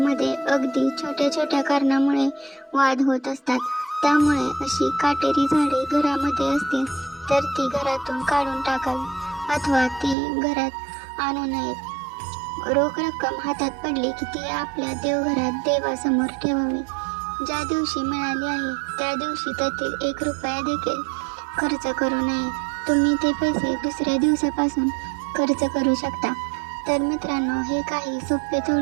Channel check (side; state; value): left; drops out; at 10.2 s